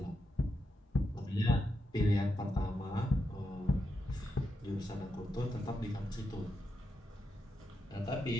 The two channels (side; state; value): both; normal; correlation 0.84